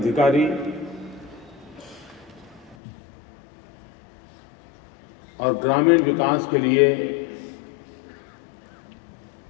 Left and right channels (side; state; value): right; drops out; at 2.8 s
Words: और ग्रामीण विकास के लिए